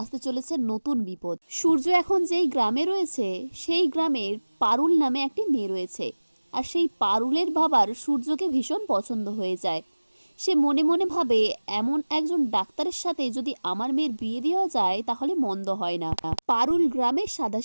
চলেছে নতুন বিপদ। সূর্য এখন যেই গ্রামে রয়েছে সেই গ্রামের পারুল নামে একটি মেয়ে রয়েছে, আর সেই পারুলের বাবার সূর্যকে ভীষণ পছন্দ হয়ে যায়। সে মনে মনে ভাবে, এমন একজন ডাক্তারের সাথে যদি আমার মেয়ের বিয়ে দেওয়া যায় তাহলে মন্দ হয় না। পারুল গ্রামের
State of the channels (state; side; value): inverted; both; correlation -1.00